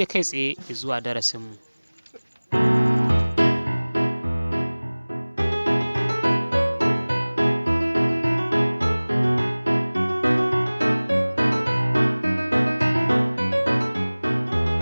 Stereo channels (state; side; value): inverted; both; correlation -1.00